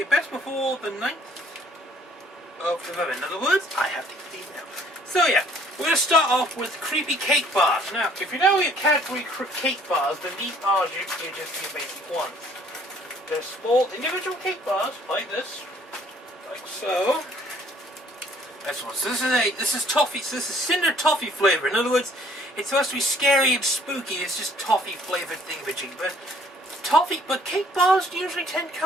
best before the 9th of November. In other words, I have to eat these now. So yeah, we're going to start off with creepy cake bars. Now, if you know your Cadbury cake bars, then these are just your basic ones. They're small individual cake bars, like this. Like so. That's one. So this is toffee, so this is cinder toffee flavor. In other words, it's supposed to be scary and spooky. It's just toffee flavored thingamajig. But cake bars usually tend to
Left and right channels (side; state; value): both; normal; correlation 0.59